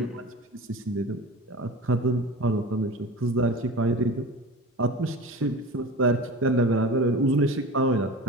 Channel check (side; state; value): both; normal; correlation 0.33